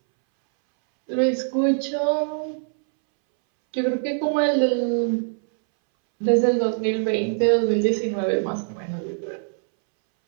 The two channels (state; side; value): silent; left; 64 dB below the other